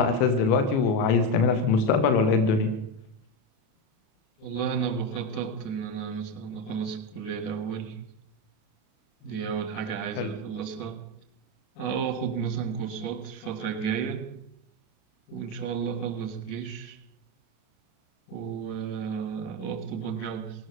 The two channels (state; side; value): late; right; 37 ms